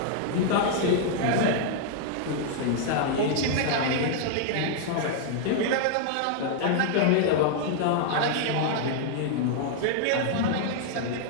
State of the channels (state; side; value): different; both; correlation -0.01